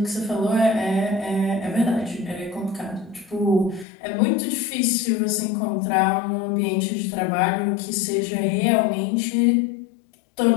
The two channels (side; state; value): right; drops out; at 3.9 s